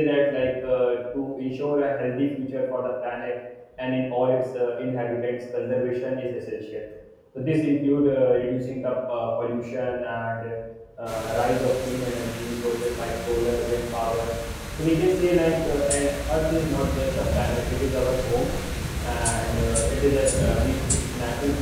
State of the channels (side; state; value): both; identical; correlation 1.00